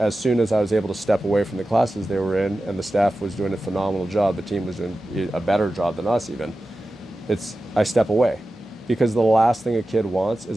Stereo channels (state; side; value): normal; both; correlation 0.94